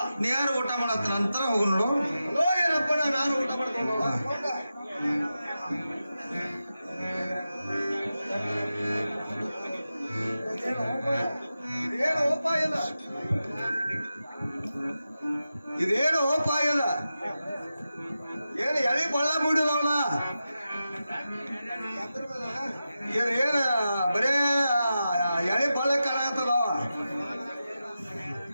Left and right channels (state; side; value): inverted; both; correlation -0.91